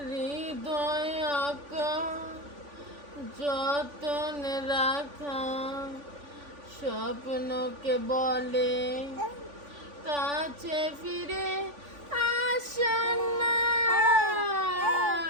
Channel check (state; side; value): late; left; 3.5 ms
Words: হৃদয় আঁকা যতনে রাখা স্বপ্নকে বলে কাছে ফিরে আসা না।